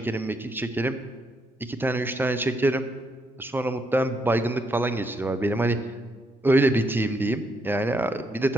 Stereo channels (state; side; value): normal; both; correlation 0.76